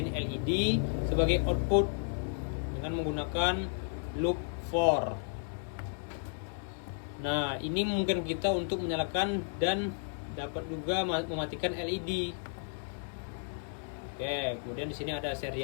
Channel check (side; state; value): right; silent; digital silence